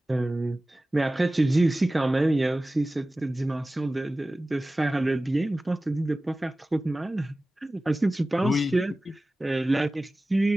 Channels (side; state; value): both; normal; correlation 0.97